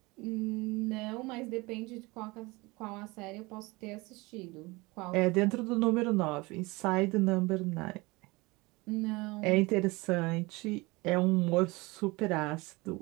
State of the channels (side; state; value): left; quieter; 23.8 dB